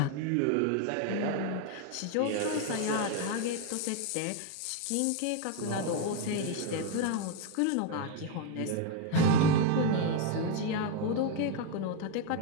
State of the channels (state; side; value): different; both; correlation 0.01